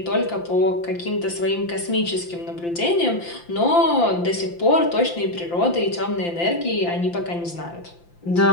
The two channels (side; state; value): right; late; 5.8 ms